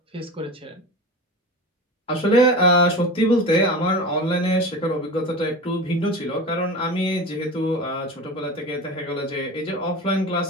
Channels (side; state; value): both; normal; correlation 0.31